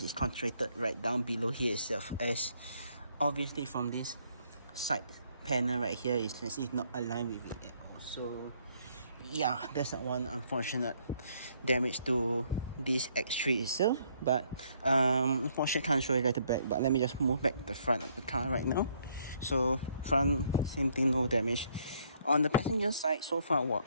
is concentrated right down below here itself, as obviously from this side panel right here, you can see it's not aligned with it at all. So yeah, that's one unfortunate damage to this X3 itself. But unfortunately I can't show you guys the back, but let me just move back the front of the car right now. So front, same thing, no damage. On the passenger side, so far,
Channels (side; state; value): both; inverted; correlation -0.68